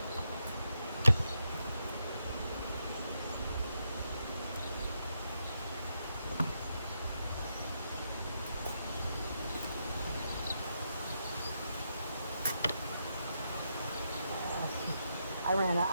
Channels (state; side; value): inverted; both; correlation -0.82